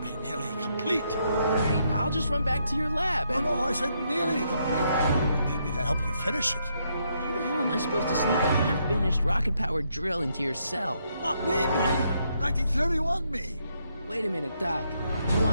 be nearly complete. Great, I'll just run back to your lab and... No, I said nearly complete. You need me to help you finish it. How the hell am I supposed to sneak a half-finished rocket-powered drill into your cell? Not me. 1931 me. Wait a minute, Doc. You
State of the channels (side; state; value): both; inverted; correlation -0.76